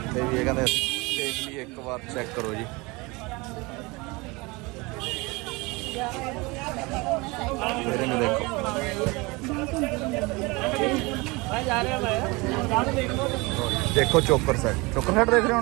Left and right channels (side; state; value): left; quieter; 25.0 dB